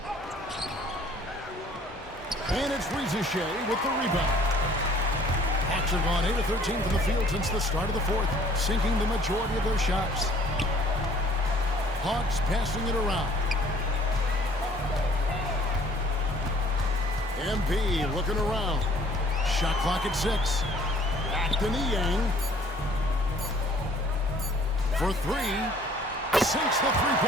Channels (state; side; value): normal; both; correlation 0.56